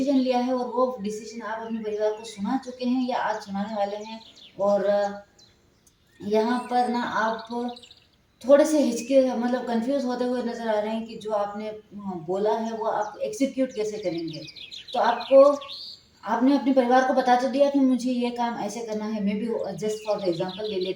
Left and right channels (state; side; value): identical; both; correlation 1.00